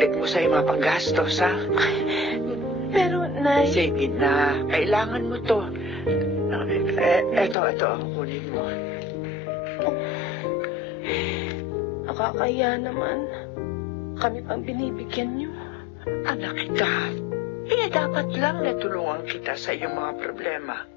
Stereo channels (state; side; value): drops out; right; at 7.6 s